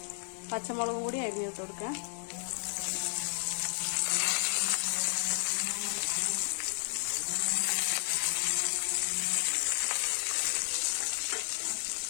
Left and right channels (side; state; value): right; silent; 56 dB below the other